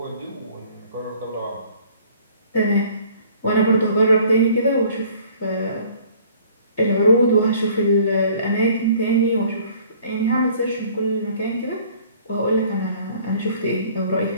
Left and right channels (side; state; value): both; inverted; correlation -0.54